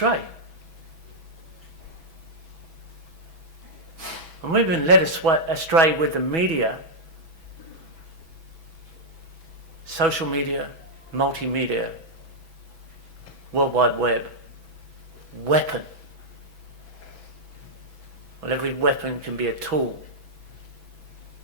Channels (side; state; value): left; late; 6.1 ms